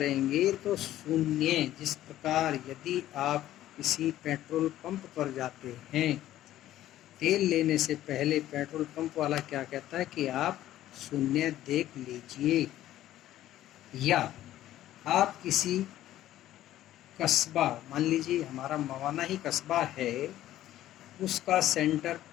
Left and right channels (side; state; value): right; quieter; 13.5 dB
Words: तो शून्य, जिस प्रकार यदि आप किसी पेट्रोल पंप पर जाते हैं, तेल लेने से पहले पेट्रोल पंप वाला क्या कहता है कि आप शून्य देख लीजिए, या आप किसी कस्बा, मान लीजिए हमारा मवाना ही कस्बा है, उसका सेंटर